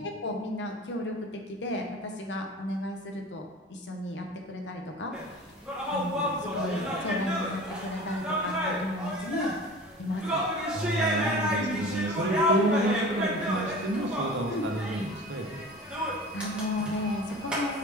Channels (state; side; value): normal; both; correlation 0.39